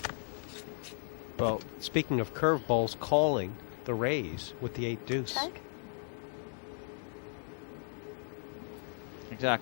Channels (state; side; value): silent; right; digital silence